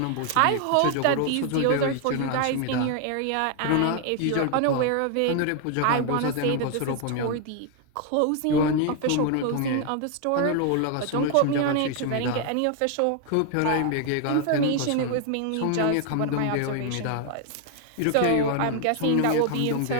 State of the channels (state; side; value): different; both; correlation 0.00